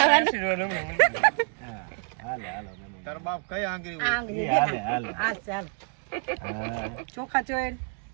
તાર બાપ કઈ આંગળી આંગળી આ ચાલ ચોખા ચોય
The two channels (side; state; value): left; quieter; 38.0 dB